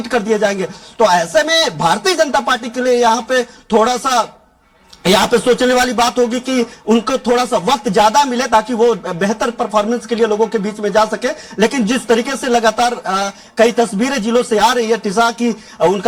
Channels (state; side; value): identical; both; correlation 1.00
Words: कर दिए जाएंगे। तो ऐसे में भारतीय जनता पार्टी के लिए यहाँ पे थोड़ा सा यहाँ पे सोचने वाली बात होगी कि उनको थोड़ा सा वक्त ज्यादा मिले ताकि वो बेहतर परफॉर्मेंस के लिए लोगों के बीच में जा सके। लेकिन जिस तरीके से लगातार कई तस्वीरें जिलों से आ रही है टिसा की,